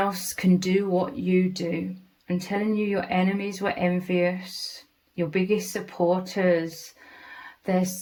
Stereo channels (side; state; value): both; identical; correlation 1.00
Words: can do what you do. I'm telling you, your enemies were envious. Your biggest supporters, they're